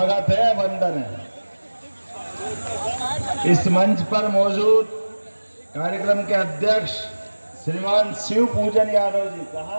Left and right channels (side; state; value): both; inverted; correlation -1.00